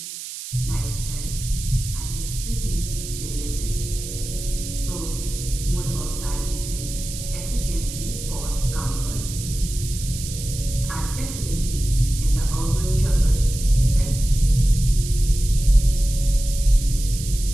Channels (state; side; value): noise; right; hiss, 9 dB below the sound